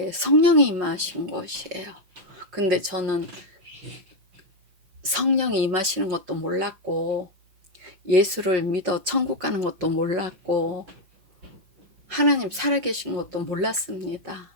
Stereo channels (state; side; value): late; left; 5.4 ms